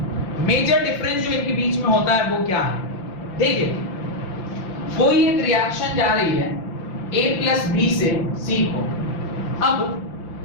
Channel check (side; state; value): right; late; 5.8 ms